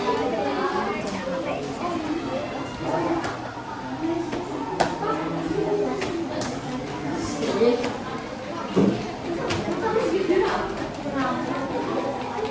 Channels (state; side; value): identical; both; correlation 1.00